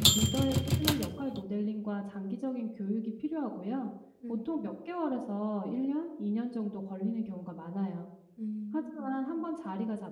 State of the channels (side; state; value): both; identical; correlation 1.00